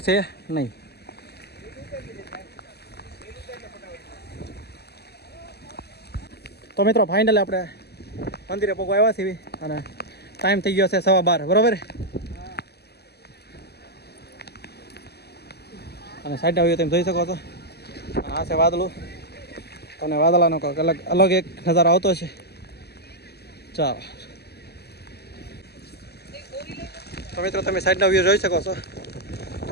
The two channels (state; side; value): late; right; 0.47 ms